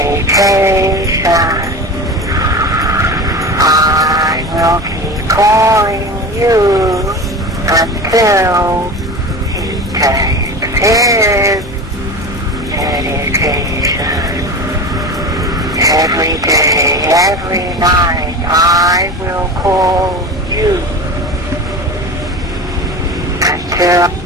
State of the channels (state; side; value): normal; both; correlation 0.30